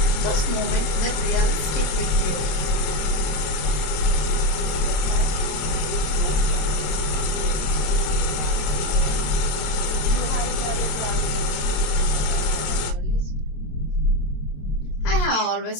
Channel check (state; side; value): late; right; 27 ms